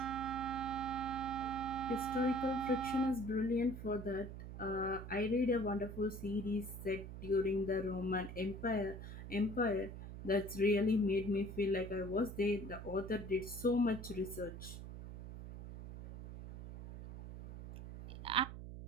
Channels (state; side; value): noise; right; hum, 10 dB below the sound